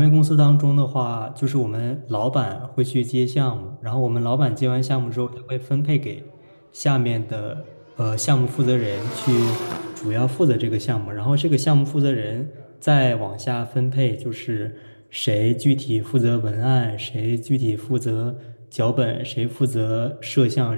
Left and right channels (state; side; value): inverted; both; correlation -1.00